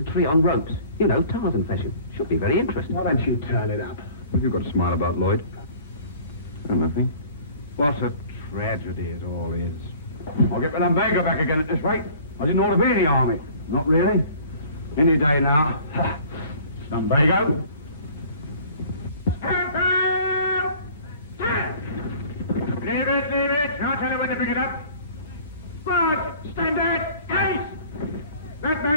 tree on ropes. You know, Tarzan fashion. Should be very interesting. Why don't you turn it up? What have you got to smile about, Lloyd? Oh, nothing. What a tragedy it all is. I'll get Lumbago back again at this rate. I didn't ought to be in the army. Not really. Any day now. Lumbago. Stand up! Stand! Leave it. I'll tell you when to pick it up. Squad, stand out! Case! That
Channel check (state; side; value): inverted; both; correlation -0.49